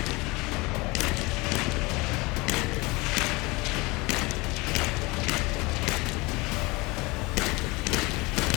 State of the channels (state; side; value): quieter; right; 24.3 dB